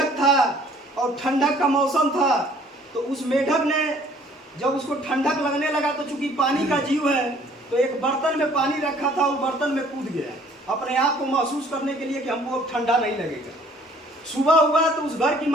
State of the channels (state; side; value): normal; both; correlation 0.57